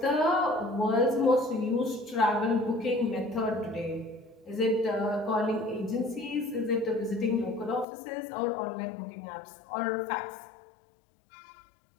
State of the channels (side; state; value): right; drops out; at 7.9 s